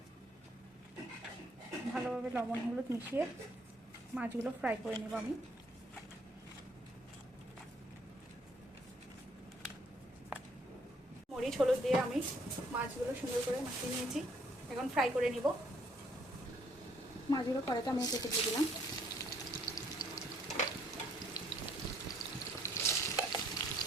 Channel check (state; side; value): normal; both; correlation 0.66